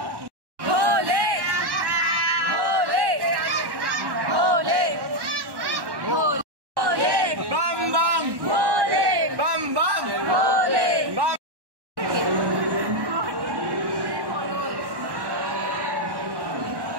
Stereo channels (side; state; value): left; late; 1.1 ms